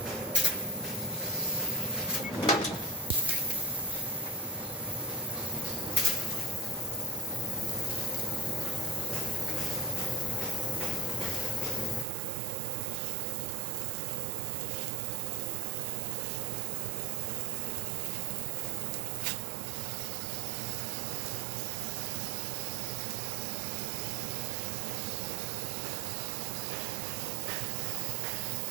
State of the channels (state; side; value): drops out; left; at 12.1 s